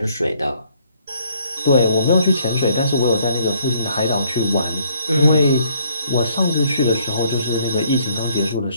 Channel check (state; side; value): inverted; both; correlation -0.65